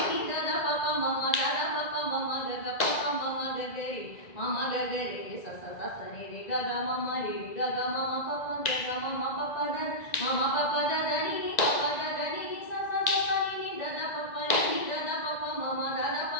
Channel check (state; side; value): late; right; 1.9 ms